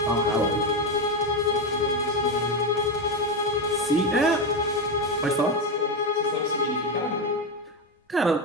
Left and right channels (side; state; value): both; normal; correlation 0.12